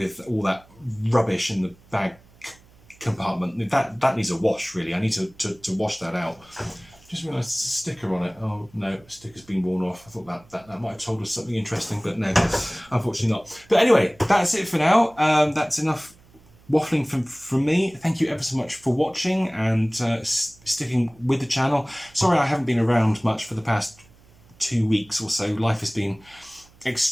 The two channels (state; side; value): noise; right; hum, 27 dB below the sound